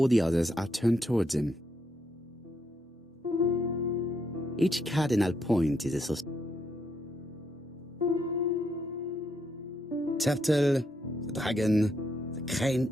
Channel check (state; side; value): normal; both; correlation 0.77